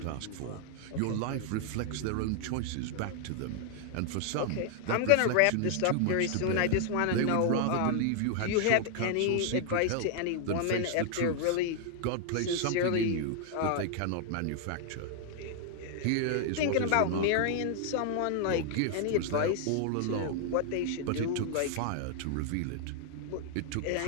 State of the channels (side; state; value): both; different; correlation 0.00